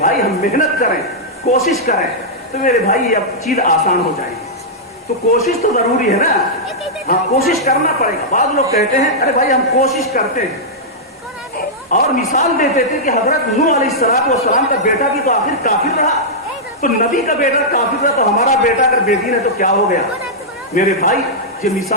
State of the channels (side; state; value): both; normal; correlation -0.09